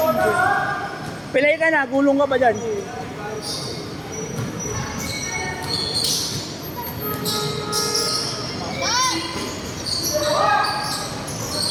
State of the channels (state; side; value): identical; both; correlation 1.00